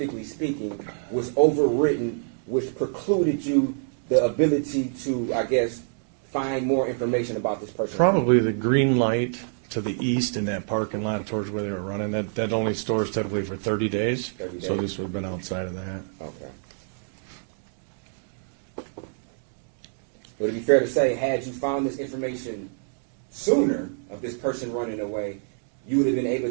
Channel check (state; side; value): silent; left; digital silence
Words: speaking, was overwritten, which precluded you the ability to, I guess, find more information about this person? Probably the green light to the east in that parking lot towards where they were running. That only stores typically for 30 days. 30 days. So this would have been outside of that. Okay. Would it be fair to say, had you found this information sooner of this person running away, you would have been able